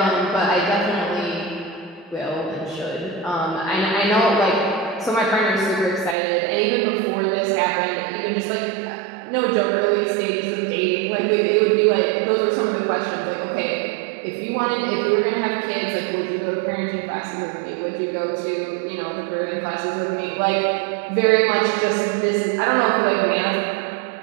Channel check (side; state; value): left; drops out; at 6.2 s